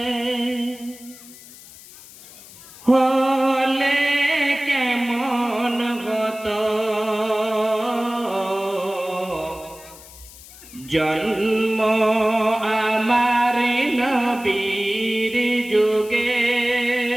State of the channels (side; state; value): left; noise; hiss, 19 dB below the sound